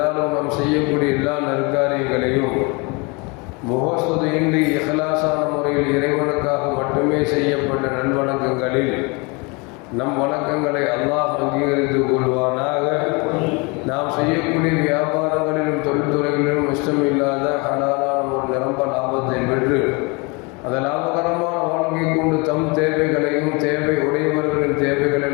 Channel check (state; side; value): quieter; right; 29.0 dB